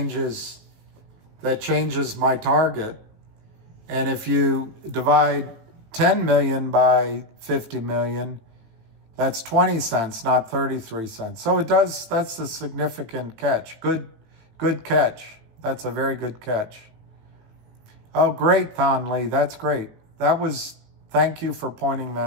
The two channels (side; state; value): left; late; 18 ms